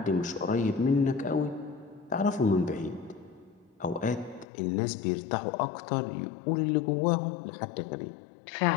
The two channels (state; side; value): drops out; right; at 4.5 s